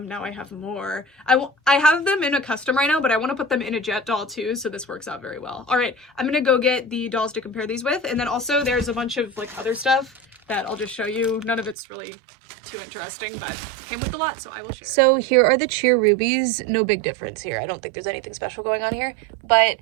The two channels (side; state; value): left; drops out; at 11.8 s